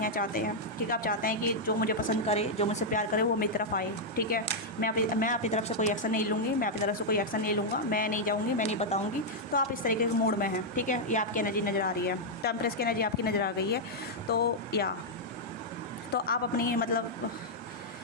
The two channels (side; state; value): both; normal; correlation -0.04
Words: ठीक है, आप चाहते हैं कि जो मुझे पसंद करे, जो मुझसे प्यार करे, वो मेरी तरफ आए। ठीक है, मैं अपनी तरफ से कोई एक्शन नहीं लूँगी, मैं अपनी तरफ से कोई एक्शन नहीं लूँगा, मैं नहीं जाऊँगी, मैं नहीं बताऊँगी। तो आप इस तरीके के मूड में हैं। ठीक है, ये आपकी एनर्जी नज़र आ रही है, तो एम्प्रेस की एनर्जी आपकी नज़र आ गई है। तो आप अपनी मतलब